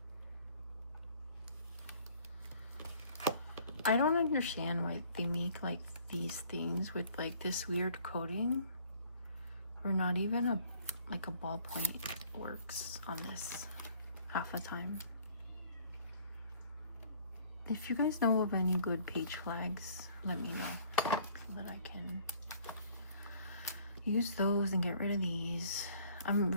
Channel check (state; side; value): inverted; both; correlation -0.56